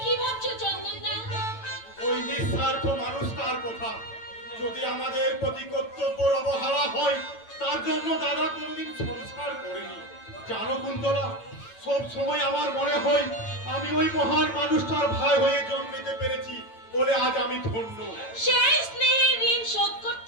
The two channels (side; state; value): right; late; 9.0 ms